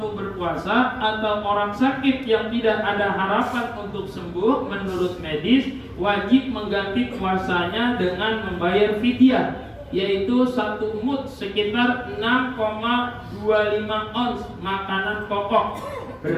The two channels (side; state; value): both; identical; correlation 1.00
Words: berpuasa atau orang sakit yang tidak ada harapan untuk sembuh menurut medis wajib mengganti puasanya dengan membayar fidyah, yaitu 1 mud sekitar 6,25 ons makanan pokok